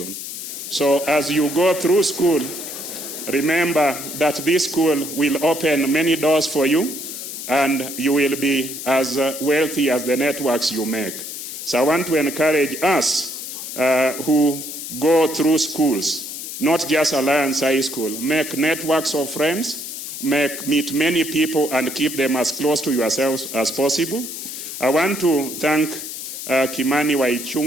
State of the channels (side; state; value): left; noise; hiss, 8 dB below the sound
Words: So as you go through school, remember that this school will open many doors for you, and you will be as wealthy as the networks you make. So I want to encourage us who go through schools, not just Alliance High School, make networks of friends, meet many people and keep them as close to yourselves as possible. I want to thank Kimani